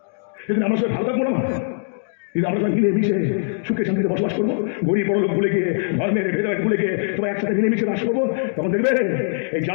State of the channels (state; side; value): silent; right; digital silence